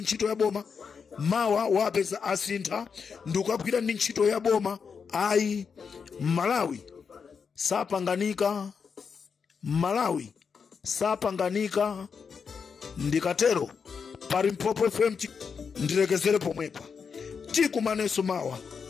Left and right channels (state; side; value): quieter; right; 6.0 dB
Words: ntchito ya boma, mawa wapeza asintha ndikugwira ndi ntchito ya boma. Ayi, Malawi sapanganika. Ndikatero Palimpopo FM ndilekezere pomwepa. Tikumaneso mawa